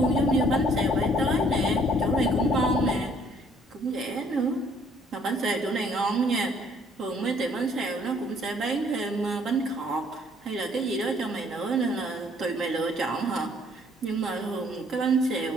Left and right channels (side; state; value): both; normal; correlation 0.62